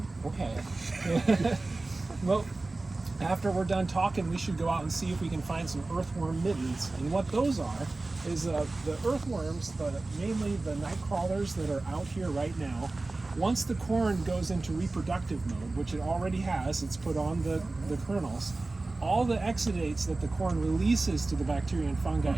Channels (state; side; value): quieter; left; 3.2 dB